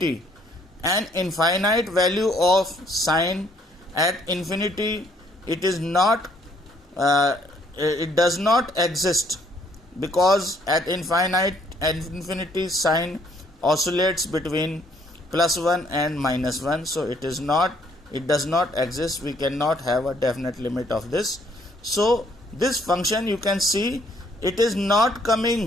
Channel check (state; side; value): normal; both; correlation 0.66